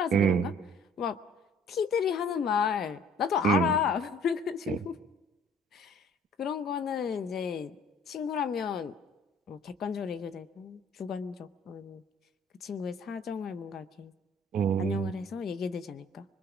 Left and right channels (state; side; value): normal; both; correlation 0.54